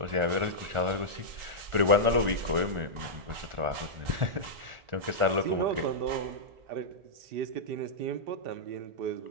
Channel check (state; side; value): late; left; 1.4 ms